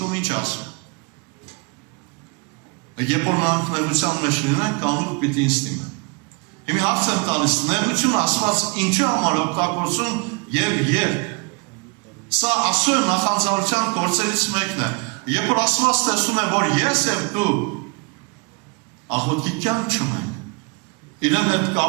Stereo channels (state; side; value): quieter; left; 31.3 dB